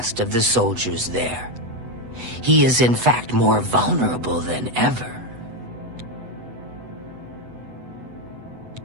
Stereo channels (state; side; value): late; left; 8.0 ms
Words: of the soldiers there. He is in fact more vulnerable than ever.